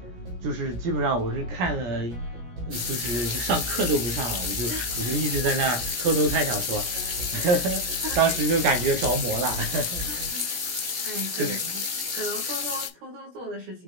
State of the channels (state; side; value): late; left; 17 ms